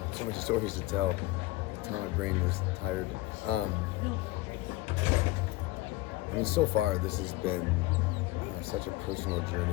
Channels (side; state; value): right; quieter; 18.9 dB